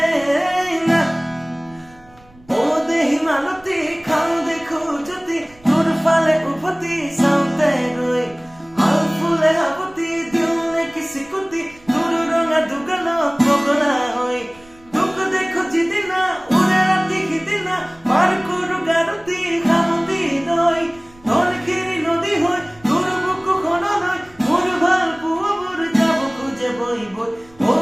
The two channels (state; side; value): noise; right; rumble, 27 dB below the sound